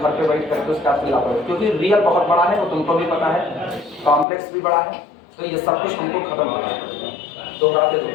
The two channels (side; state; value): right; drops out; at 4.2 s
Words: पे वेट करके उसका लापरवाही, क्योंकि रियल बहुत बड़ा है, वो तुमको भी पता है, कॉम्प्लेक्स भी बड़ा है, तो ये सब कुछ तुमको खत्म करना है। दोहराते